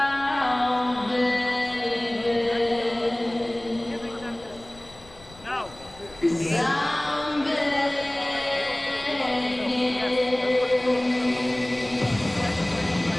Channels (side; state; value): left; noise; rumble, 22 dB below the sound